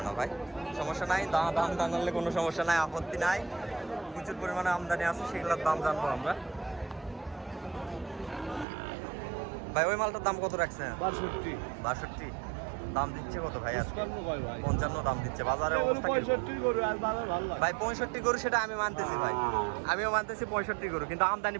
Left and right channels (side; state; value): left; drops out; at 8.7 s